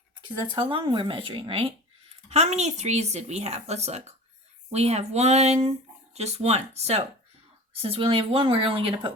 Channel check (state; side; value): normal; both; correlation 0.37